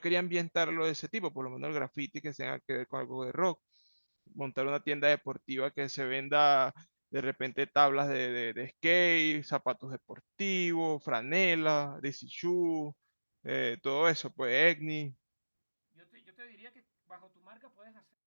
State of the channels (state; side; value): inverted; both; correlation -1.00